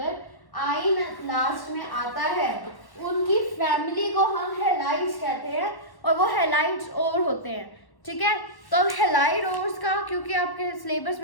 आयन लास्ट में आता है उनकी फैमिली को हम हैलाइड्स कहते हैं, और वो हैलाइड्स और होते हैं। ठीक है, तो अब हैलाइड ओर्स का क्योंकि आपके सिलेबस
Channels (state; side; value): late; right; 1.1 ms